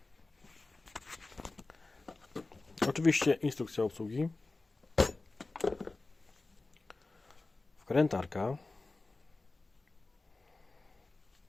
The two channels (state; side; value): quieter; right; 3.3 dB